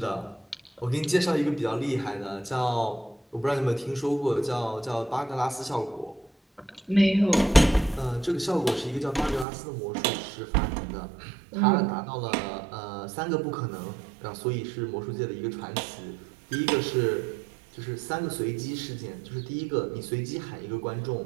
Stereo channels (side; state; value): left; drops out; at 9.5 s